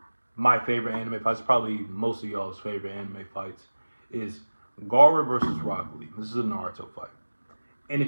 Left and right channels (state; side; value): inverted; both; correlation -1.00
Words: my favorite anime fights, probably most of y'all's favorite anime fights, is Gaara versus Rock Lee. This is a Naruto fight. And